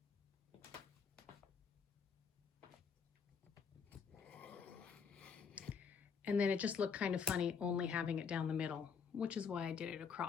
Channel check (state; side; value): quieter; right; 6.3 dB